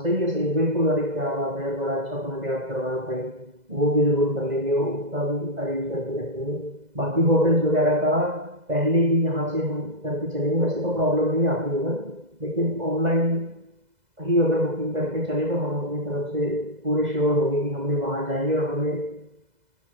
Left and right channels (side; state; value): left; late; 2.0 ms